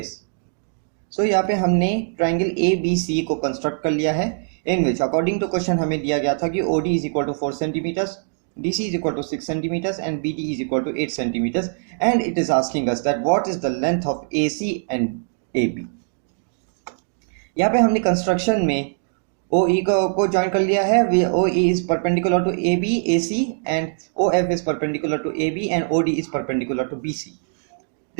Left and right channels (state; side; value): silent; left; digital silence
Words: So यहाँ पे हमने triangle A B C को construct कर लिया है, in which according to question हमें दिया गया था कि O D is equal to 4 centimetres, D C is equal to 6 centimetres and B D is equal to 8 centimetres, and it is asking us that what is the length of A C and A B. यहाँ पे हमने construction में ओ ई को join कर लिया है। O E is perpendicular to A B A C and O F is perpendicular to A B and O D is perpendicular to B C.